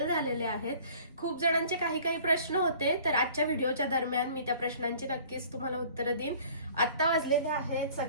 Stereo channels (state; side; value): inverted; both; correlation -0.50